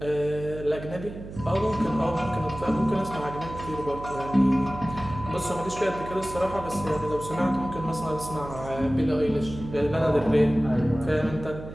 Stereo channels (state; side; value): noise; right; hum, 12 dB below the sound